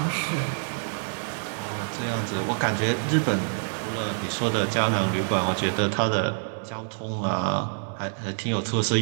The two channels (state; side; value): silent; left; 61 dB below the other